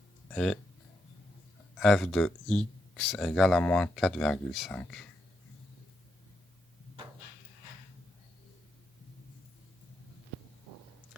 et f de x égale à moins 4,5.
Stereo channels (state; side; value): normal; both; correlation 0.82